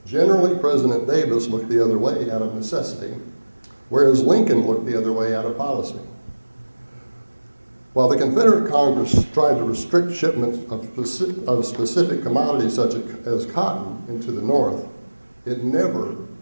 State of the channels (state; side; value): inverted; both; correlation -1.00